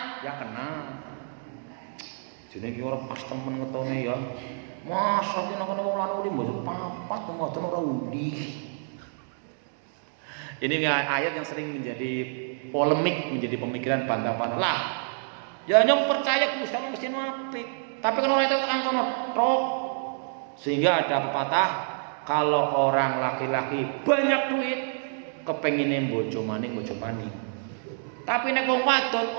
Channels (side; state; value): left; silent; 59 dB below the other